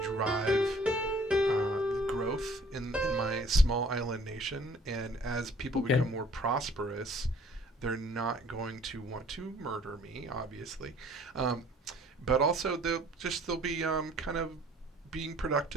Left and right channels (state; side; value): normal; both; correlation 0.55